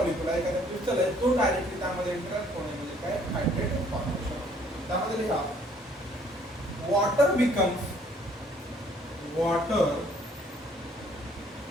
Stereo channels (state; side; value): normal; both; correlation 0.61